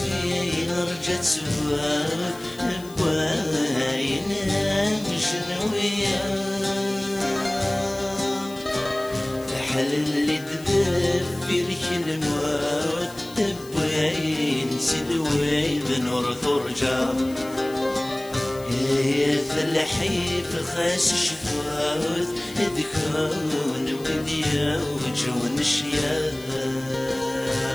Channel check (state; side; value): noise; left; hiss, 20 dB below the sound